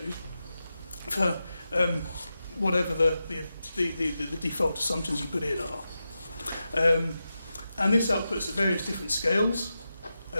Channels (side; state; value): both; inverted; correlation -0.90